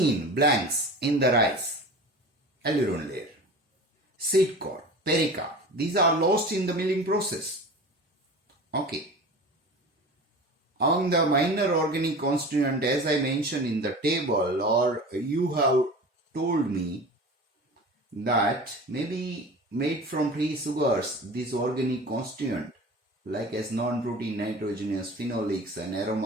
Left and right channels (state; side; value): normal; both; correlation 0.36